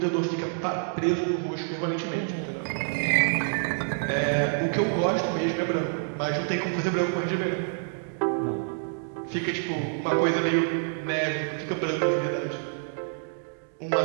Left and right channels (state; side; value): silent; left; digital silence